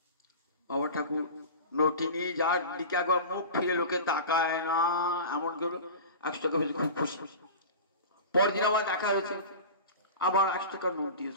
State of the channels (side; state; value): both; inverted; correlation -0.33